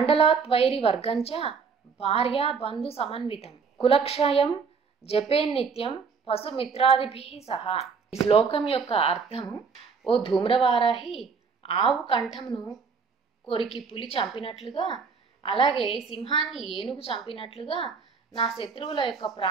వర్గంచ భార్యా బంధు సమన్వితం కులక్షయం జపేన్నిత్యం పశుమిత్రాదిభి సహా. ఈ శ్లోకం యొక్క అర్థము, ఓ ధూమ్రవారాహి, ఆవు కంఠంను కొరికి పులి చంపినట్లుగా, అలాగే సింహాన్ని ఏనుగు చంపినట్లుగా నా శత్రువుల యొక్క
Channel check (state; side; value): quieter; left; 5.5 dB